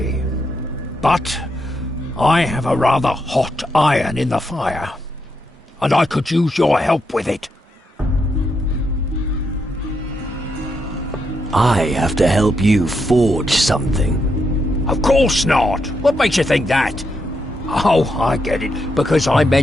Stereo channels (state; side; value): normal; both; correlation 0.81